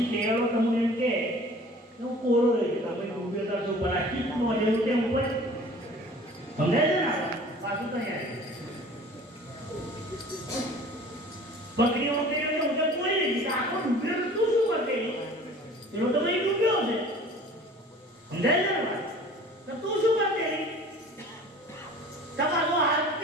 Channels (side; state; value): both; normal; correlation 0.46